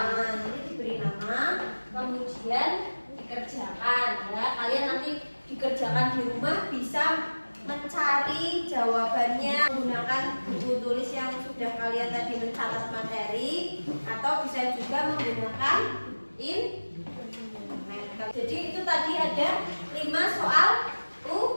Jadi diberi nama, kemudian dikerjakan ya. Kalian nanti dikerjakan di rumah bisa mencari jawabannya menggunakan buku tulis yang sudah kalian tadi mencatat materi, atau bisa juga menggunakan internet. Jadi itu tadi ada 5 soal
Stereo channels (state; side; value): inverted; both; correlation -1.00